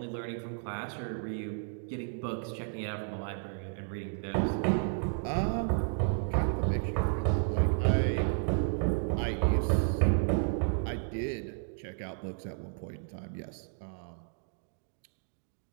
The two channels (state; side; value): silent; left; digital silence